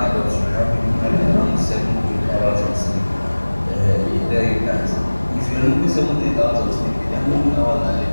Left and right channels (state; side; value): inverted; both; correlation -1.00